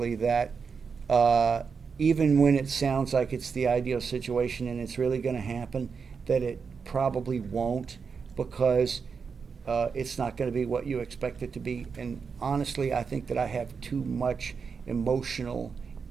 that even when it sounds like it's the ideal situation and it's really going to happen, that it probably won't, because it's not going to be what you expect it to be. And honestly, I think that I have too much emotional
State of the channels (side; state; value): left; quieter; 5.7 dB